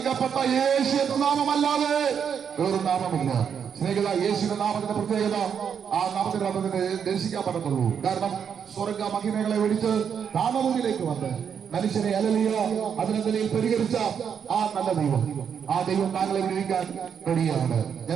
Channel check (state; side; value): quieter; left; 7.5 dB